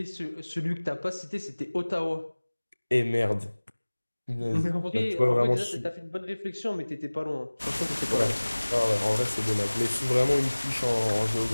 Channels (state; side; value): inverted; both; correlation -1.00